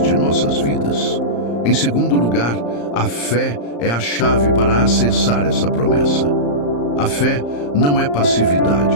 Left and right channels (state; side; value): late; right; 34 ms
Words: de nossas vidas. Em segundo lugar, a fé é a chave para acessar essa promessa. A fé não é